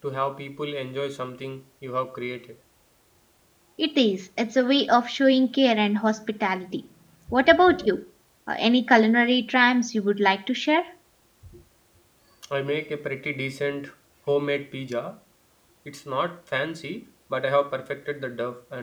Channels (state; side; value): identical; both; correlation 1.00